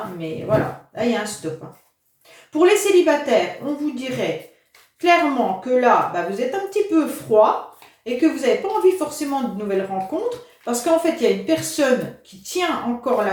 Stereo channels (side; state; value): both; identical; correlation 1.00